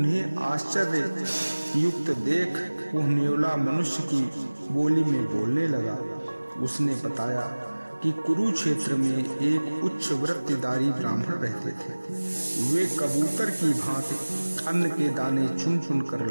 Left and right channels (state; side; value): inverted; both; correlation -1.00